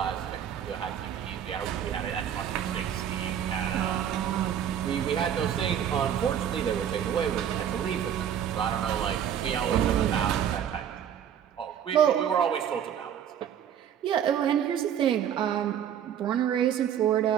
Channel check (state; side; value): quieter; left; 9.3 dB